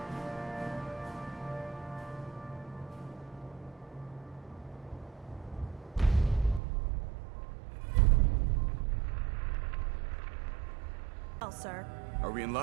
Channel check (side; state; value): left; drops out; at 6.6 s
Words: Well, sir. Are we in